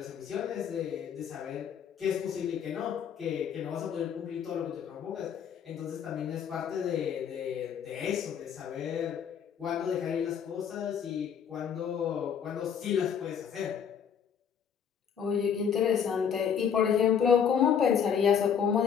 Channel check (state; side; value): quieter; right; 7.7 dB